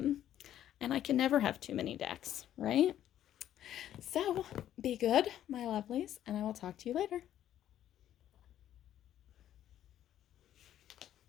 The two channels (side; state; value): right; quieter; 11.5 dB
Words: And I can never have too many decks, right? So be good, my lovelies, and I will talk to you later.